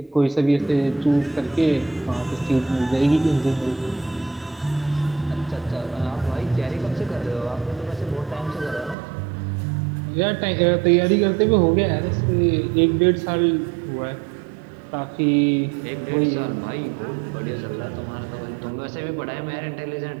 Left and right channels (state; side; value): drops out; left; at 9.0 s